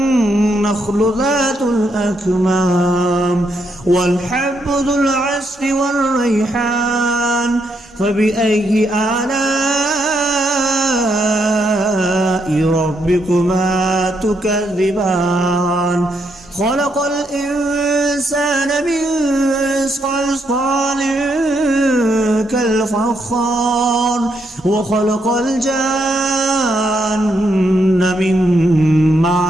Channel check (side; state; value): both; normal; correlation 0.77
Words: ذات الأكمام والحب ذو العصف والريحان فبأي آلاء ربكما تكذبان خلق الإنسان من صلصال كالفخار وخلق الجان من